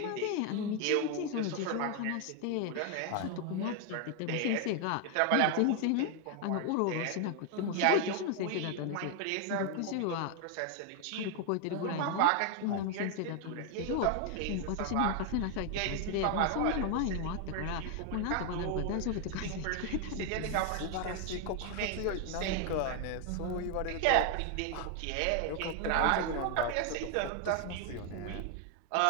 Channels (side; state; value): both; different; correlation 0.00